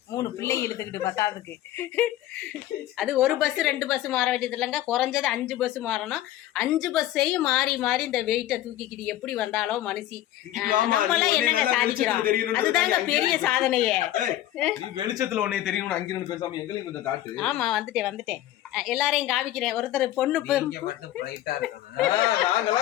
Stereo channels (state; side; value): quieter; right; 13.9 dB